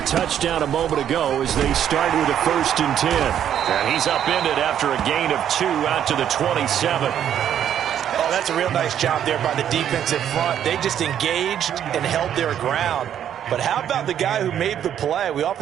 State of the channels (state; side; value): quieter; left; 9.9 dB